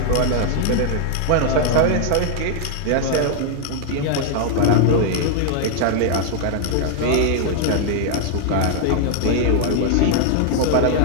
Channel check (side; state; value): both; different; correlation 0.00